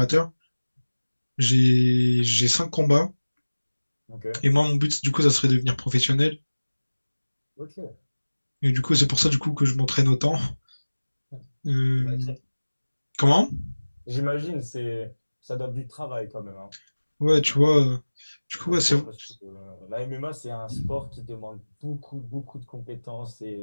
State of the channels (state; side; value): inverted; both; correlation -1.00